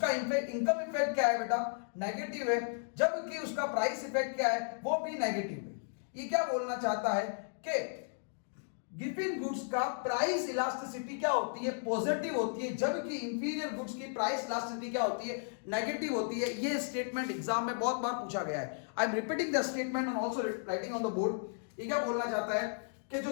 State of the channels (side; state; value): right; silent; digital silence